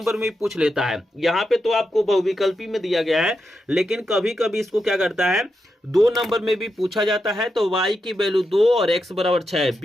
में पूछ लेता है। यहाँ पे तो आपको बहुविकल्पी में दिया गया है, लेकिन कभी कभी इसको क्या करता है, 2 नंबर में भी पूछा जाता है। तो y की वैल्यू 2 और x बराबर 6,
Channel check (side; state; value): both; normal; correlation 0.86